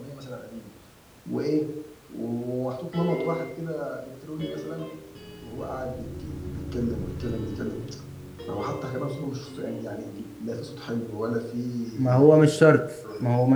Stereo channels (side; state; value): both; identical; correlation 1.00